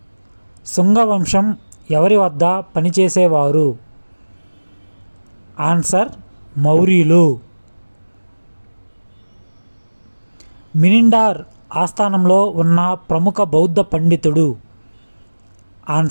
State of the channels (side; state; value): both; inverted; correlation -1.00